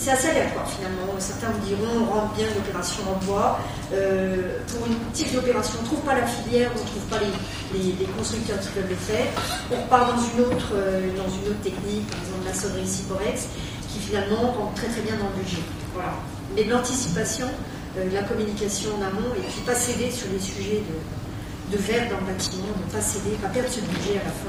assez aléatoire finalement. Certains vous diront on rentre bien l'opération en bois, pour une type d'opération on ne trouve pas la filière, on ne trouve pas les constructeurs qui peuvent le faire, on repart dans une autre technique, par exemple la sonnerie Ciporex, qui finalement rentre très très bien dans le budget. Voilà. Mais de l'anticipation, la communication en amont, et puis pas céder sur les sujets de verre dans le bâtiment, ne pas céder, pas perdre ce budget à la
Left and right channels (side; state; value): both; identical; correlation 1.00